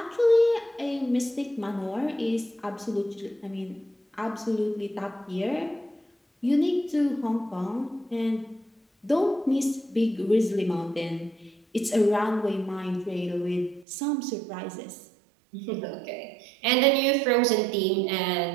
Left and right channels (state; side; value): drops out; left; at 13.9 s